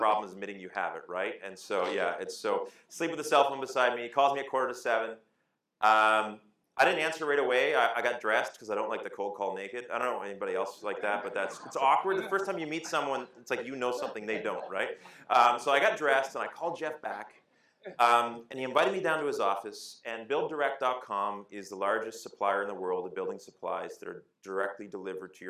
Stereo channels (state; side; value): identical; both; correlation 1.00